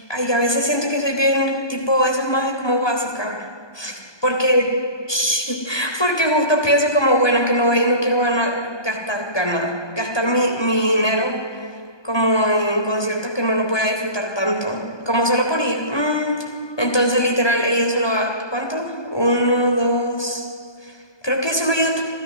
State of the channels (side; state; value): right; late; 1.2 ms